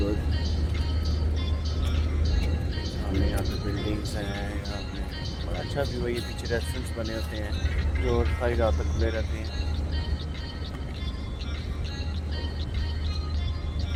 सामने यहाँ पे बिल्डिंग्स हैं। यहाँ पे बड़ा अच्छा व्यू है। ये पीछे रेस्टोरेंट्स बने होते हैं जो सारी रात तक खुले रहते हैं।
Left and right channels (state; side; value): identical; both; correlation 1.00